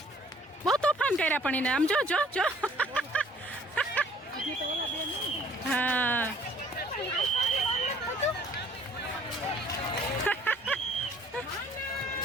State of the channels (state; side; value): normal; both; correlation 0.57